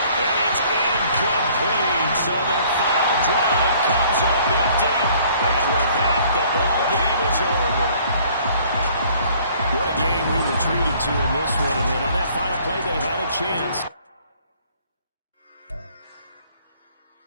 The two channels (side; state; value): both; inverted; correlation -0.58